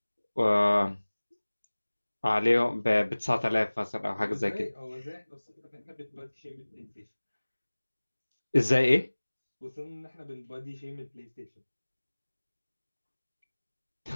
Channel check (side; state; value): both; inverted; correlation -1.00